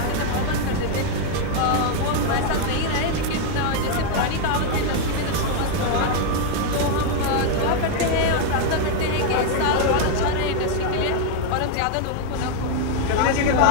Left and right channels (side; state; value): both; different; correlation 0.00